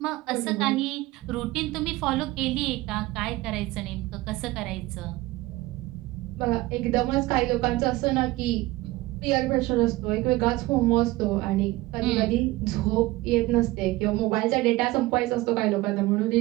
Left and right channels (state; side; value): quieter; left; 19.0 dB